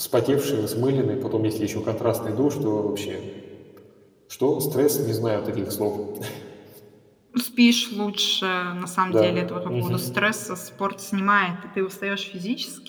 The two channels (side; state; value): both; identical; correlation 1.00